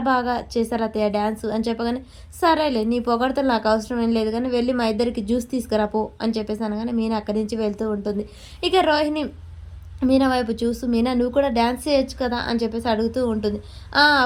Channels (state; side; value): identical; both; correlation 1.00